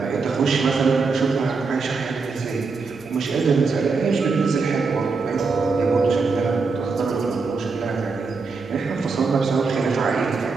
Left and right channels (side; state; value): left; quieter; 4.5 dB